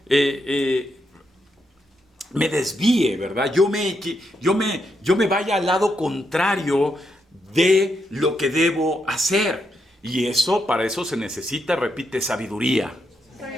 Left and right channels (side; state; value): both; normal; correlation 0.81